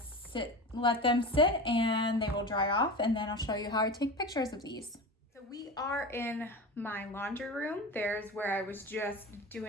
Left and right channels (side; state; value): both; normal; correlation 0.29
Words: let them sit and they will dry off, and then I'll show you how I take pictures of these. So we are in my laundry room. There's where I was just